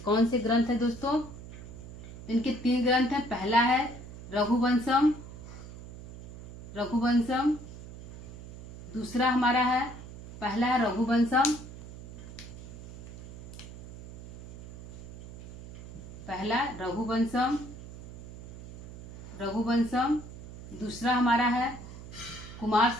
से ग्रंथ है दोस्तों, इनके 3 ग्रंथ हैं। पहला है रघुवंशम, दूसरा हमारा है, पहला है रघुवंशम, दूसरा हमारा है कुमार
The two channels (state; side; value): noise; right; hum, 13 dB below the sound